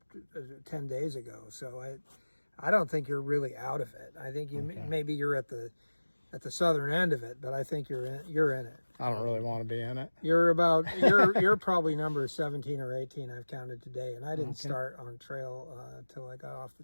10 days ago. So I don't think you're really out of it. I think maybe you're at the southern end of it, but I think you're in it. I don't really want to be in it. You're probably number 17 or 18 I've counted today, and I didn't start on trail until I got off the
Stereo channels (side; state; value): both; inverted; correlation -1.00